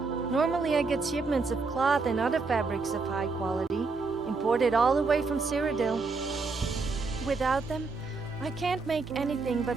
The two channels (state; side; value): quieter; left; 4.2 dB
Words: Normally I get shipments of cloth and other fabrics of high quality, imported all the way from Cyrodiil. Without them, I can't make anything but